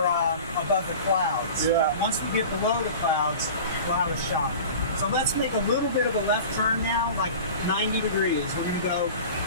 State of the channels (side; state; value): both; inverted; correlation -0.37